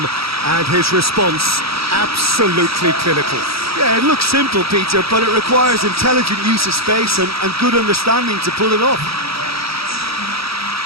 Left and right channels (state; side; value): late; left; 0.76 ms